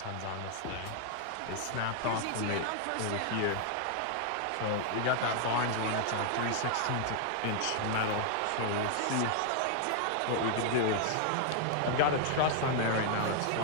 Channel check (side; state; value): both; different; correlation 0.00